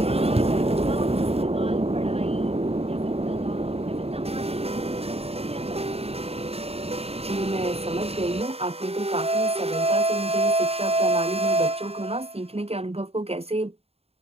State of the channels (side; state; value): left; late; 0.29 ms